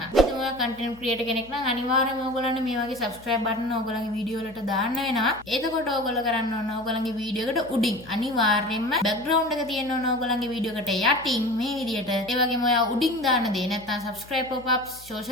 ඉතින් ඔයා content creator කෙනෙක් නම් අනිවාර්යයෙන්ම ඔයගොල්ලන්ට මේ වගේ subscribe button ඔයගොල්ලන්ගේ වීඩියෝ වලට දාන්න වෙනවා. එතකොට ඔයගොල්ලෝ කරන්න ඕන ඔයගොල්ලන්ගේ වීඩියෝ එකට උඩින් අනිවාර්යයෙන්ම background එක තියෙන්න ඕන ඔයගොල්ලන්ගේ වීඩියෝ එකට යටින් මේ විදිහට. ඒ වගේම ඔයා උඩින් දාන දේ නැත්නම් subscribe pop-ups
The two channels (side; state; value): left; noise; hum, 23 dB below the sound